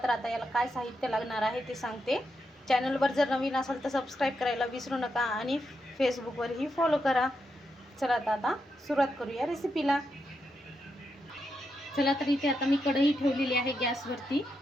तर आता याला काय साहित्य लागणार आहे ते सांगते. चॅनलवर जर नवीन असाल तर सबस्क्राईब करायला विसरू नका आणि फेसबुकवरही फॉलो करा. चला तर आता सुरुवात करूया रेसिपीला. चला तर इथे आता मी कढई ठेवलेली आहे गॅसवरती.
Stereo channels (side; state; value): both; normal; correlation 0.83